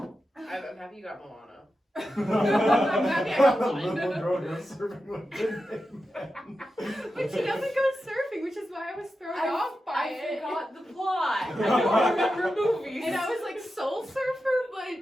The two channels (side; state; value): both; normal; correlation 0.90